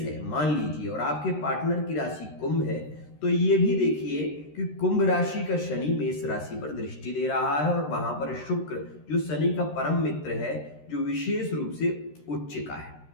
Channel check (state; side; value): late; right; 13 ms